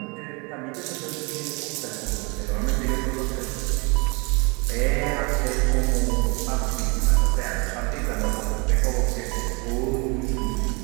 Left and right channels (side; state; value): left; quieter; 30.1 dB